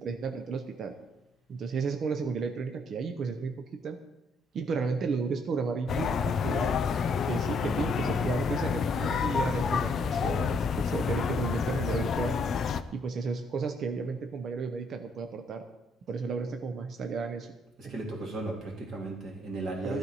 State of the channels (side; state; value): both; normal; correlation 0.69